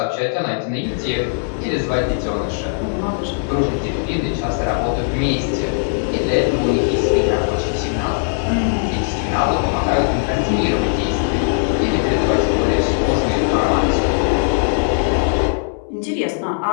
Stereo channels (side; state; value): right; silent; 67 dB below the other